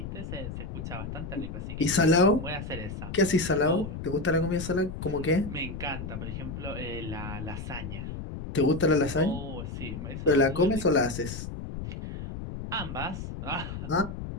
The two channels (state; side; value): noise; left; rumble, 7 dB below the sound